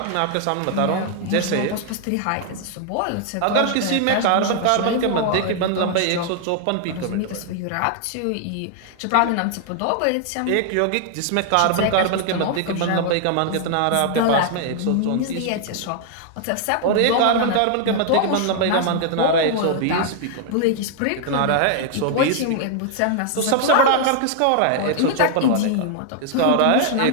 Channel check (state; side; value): different; both; correlation 0.00